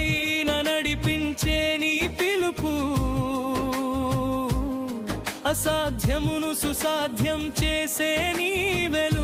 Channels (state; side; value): identical; both; correlation 1.00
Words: నడిపించే నీ పిలుపు, అసాధ్యమును సుసాధ్యం చేసే నీ